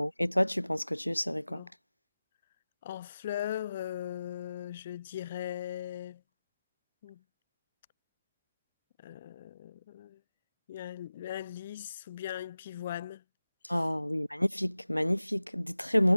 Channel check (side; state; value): both; inverted; correlation -0.94